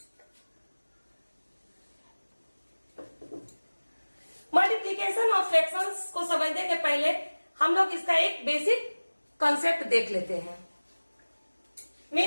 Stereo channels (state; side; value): inverted; both; correlation -1.00